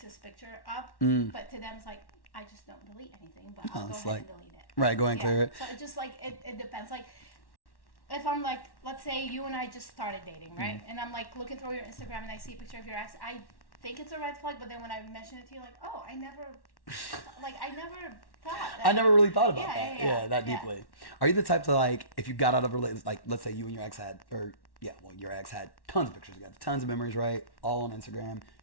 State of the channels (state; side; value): late; right; 1.1 ms